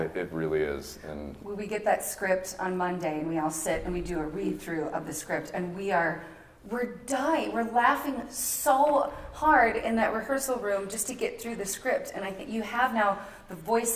It really is. And we get that script on Monday, and we all sit and we do a read through of the script, and we're dying. We're laughing so hard in that rehearsal room just to get through the script. And I think you have now the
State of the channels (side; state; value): both; identical; correlation 1.00